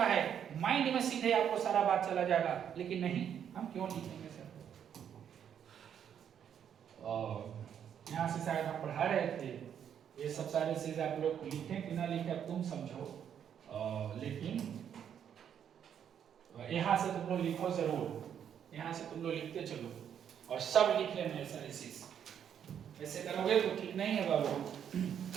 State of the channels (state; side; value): quieter; left; 8.8 dB